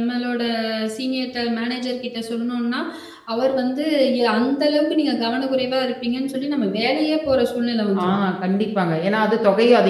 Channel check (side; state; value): both; identical; correlation 1.00